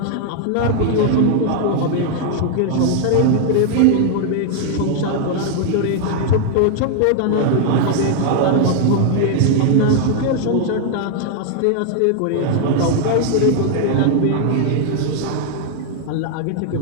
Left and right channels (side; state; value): both; different; correlation 0.00